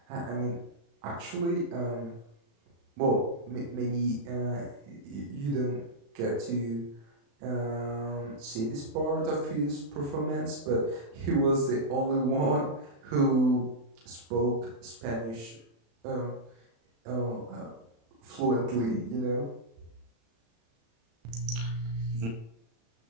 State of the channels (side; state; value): left; late; 35 ms